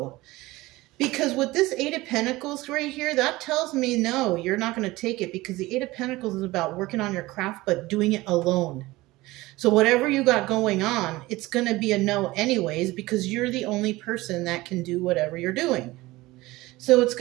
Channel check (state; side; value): quieter; left; 19.5 dB